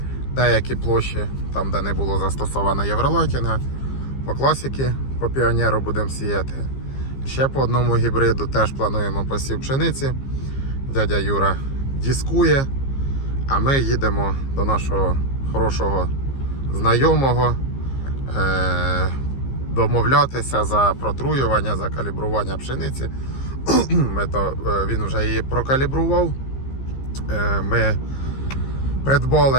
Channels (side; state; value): right; late; 15 ms